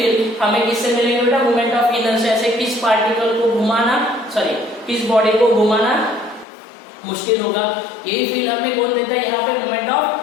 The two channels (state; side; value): drops out; right; at 6.5 s